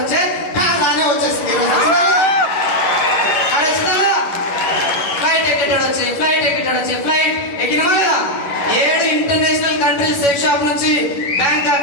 వచ్చే, కారు రానే వచ్చేసింది. ఫ్లైట్ ఎక్కేటాడు వచ్చే, ఫ్లైట్ ఎక్కేటాడు వచ్చే, ఫ్లైట్ ఎక్కినమా లేదా? 7 ఇంటర్నేషనల్ కంట్రీస్ సెక్ షాప్ నుంచి Bangkok,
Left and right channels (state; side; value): late; right; 11 ms